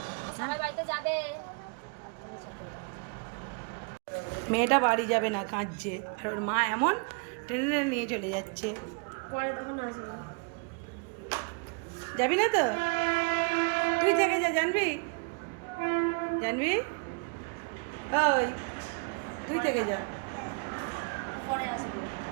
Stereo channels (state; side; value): quieter; left; 37.5 dB